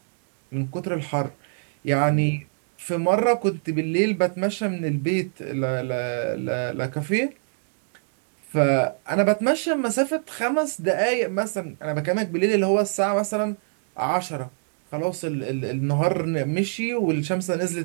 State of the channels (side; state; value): left; silent; digital silence